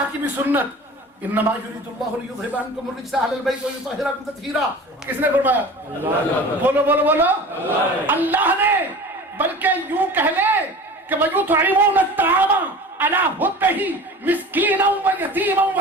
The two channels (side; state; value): both; normal; correlation 0.38